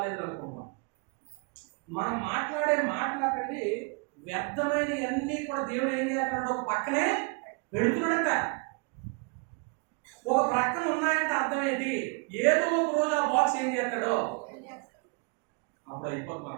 అనుకున్నాం. మనం మాట్లాడే మాట్లాడండి వ్యర్థమైనవి అన్నీ కూడా దేవుడు ఏం చేస్తున్నాడు? ఒక పక్కనే పెడుతున్నాడంట. ఒక ప్రక్కన ఉన్నాయంటే అర్థం ఏంటి? ఏదో ఒక రోజు ఆ బాక్స్ ఏం చేస్తాడో అప్పుడు అయిపోతుంది మన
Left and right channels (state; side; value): quieter; left; 33.5 dB